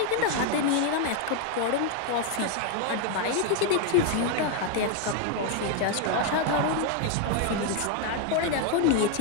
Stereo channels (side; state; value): both; different; correlation 0.00